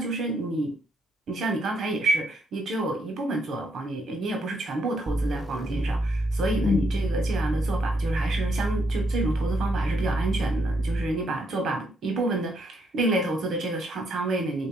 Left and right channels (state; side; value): normal; both; correlation 0.75